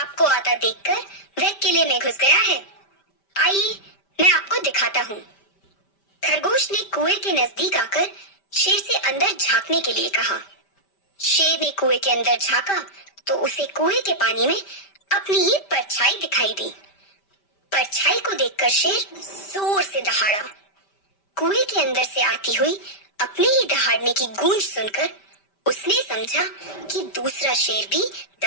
आता देखकर वह किले में घुस गया है। आइए, मैं आपको दिखाता हूँ। खरगोश ने कुएं के नजदीक आकर शेर से अंदर झांकने के लिए कहा। शेर ने कुएं के अंदर झांका तो उसे कुएं के पानी में अपनी ही परछाई दिखाई दी। परछाई को देखकर शेर जोर से दहाड़ा। कुएं के अंदर से आती हुई अपने ही दहाड़ने की गूंज सुनकर उसने समझा कि दूसरा शेर भी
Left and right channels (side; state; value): right; late; 5.1 ms